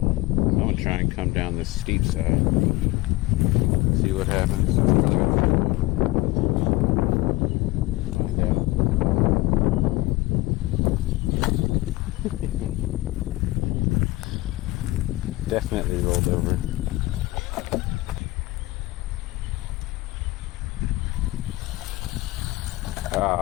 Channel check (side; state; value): right; quieter; 19.5 dB